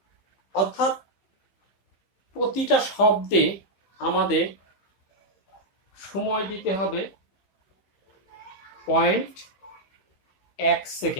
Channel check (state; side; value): late; right; 15 ms